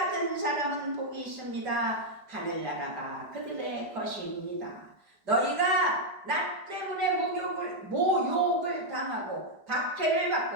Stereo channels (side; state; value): left; late; 5.0 ms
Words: 사람은 복이 있습니다. 하늘나라가 그들의 것입니다. 너희가 나 때문에 모욕을 당하고 박해를